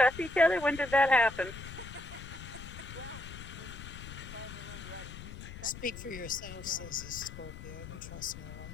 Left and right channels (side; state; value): left; noise; rumble, 12 dB below the sound